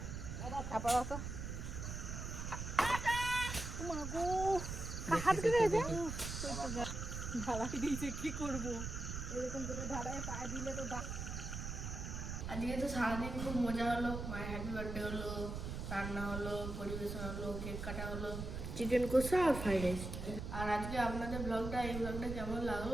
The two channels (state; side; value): noise; right; rumble, 5 dB below the sound